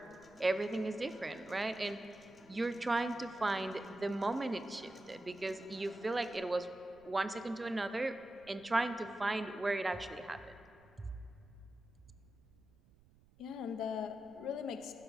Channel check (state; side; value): noise; right; rumble, 28 dB below the sound